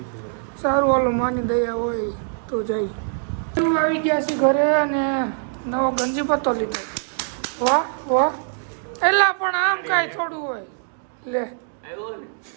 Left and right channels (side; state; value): left; silent; digital silence